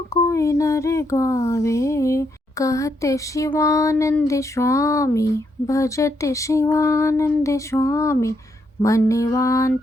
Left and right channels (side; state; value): both; normal; correlation 0.77